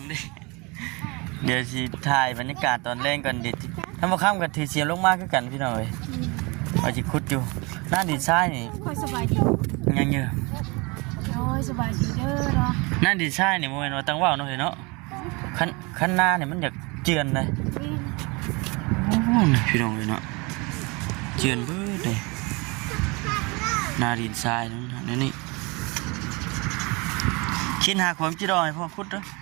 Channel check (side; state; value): left; quieter; 27.4 dB